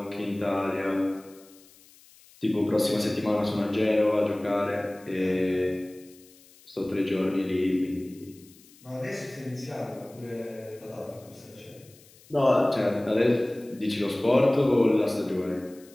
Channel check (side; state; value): left; noise; hiss, 26 dB below the sound